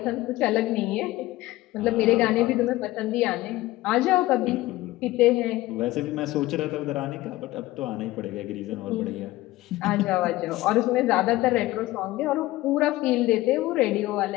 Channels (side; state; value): right; quieter; 17.6 dB